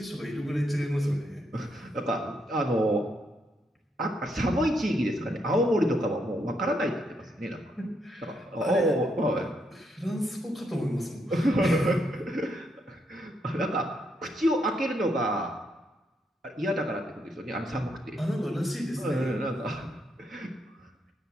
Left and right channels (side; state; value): both; normal; correlation 0.77